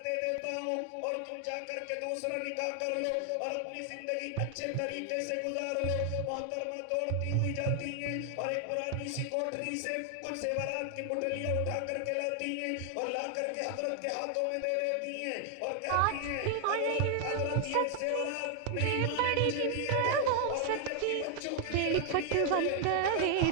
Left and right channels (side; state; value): both; different; correlation 0.00